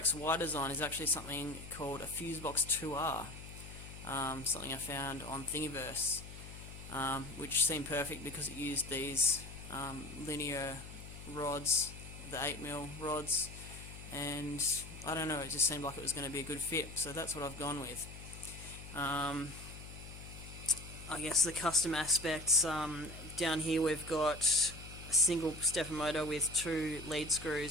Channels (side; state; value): left; noise; hum, 13 dB below the sound